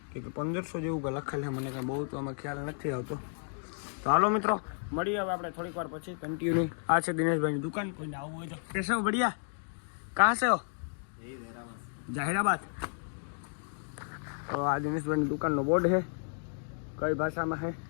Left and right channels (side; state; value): right; silent; 56 dB below the other